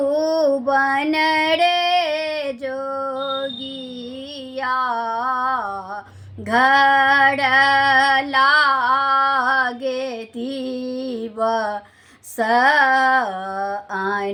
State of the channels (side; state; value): both; identical; correlation 1.00